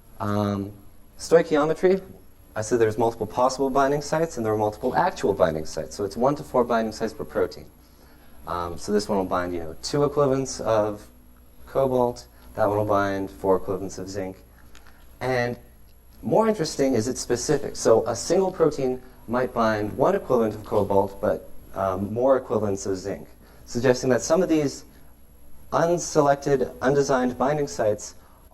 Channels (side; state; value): both; identical; correlation 1.00